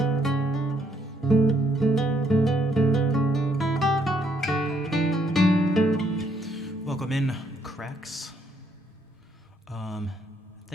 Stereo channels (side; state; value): both; normal; correlation 0.70